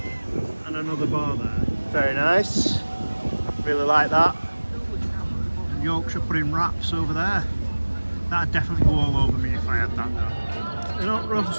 and another bar there. Very nice, really like that. And Yorkshire pudding wraps over there. That'd definitely go all over me if I had that though. They're not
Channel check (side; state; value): both; inverted; correlation -1.00